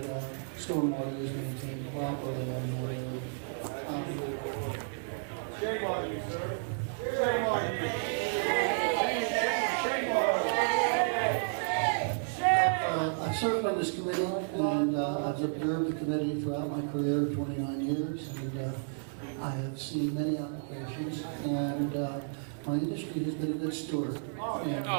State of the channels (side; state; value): left; silent; digital silence